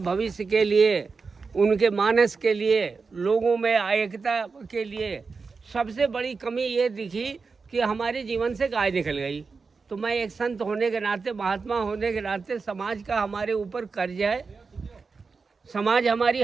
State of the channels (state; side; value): quieter; left; 4.7 dB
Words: भविष्य के लिए, उनके मानस के लिए, लोगों में एकता के लिए सबसे बड़ी कमी ये दिखी कि हमारे जीवन से गाय निकल गई। तो मैं एक संत होने के नाते, महात्मा होने के नाते, समाज का हमारे ऊपर कर्ज है, समाज हमारी